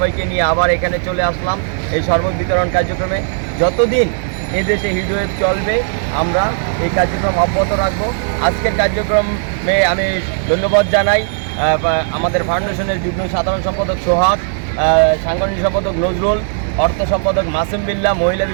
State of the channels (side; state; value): left; silent; digital silence